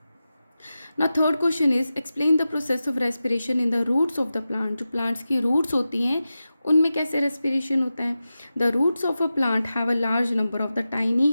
ना। Third question is explain the process of respiration in the roots of the plant. जो प्लांट्स की रूट्स होती हैं उनमें कैसे रेस्पिरेशन होता है। The roots of a plant have a large number of the tiny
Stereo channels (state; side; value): inverted; both; correlation -0.93